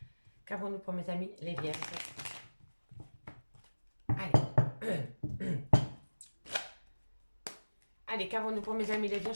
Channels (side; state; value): both; inverted; correlation -1.00